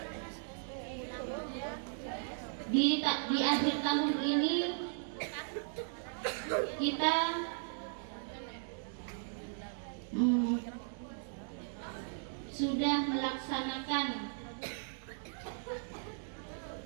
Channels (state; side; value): silent; left; digital silence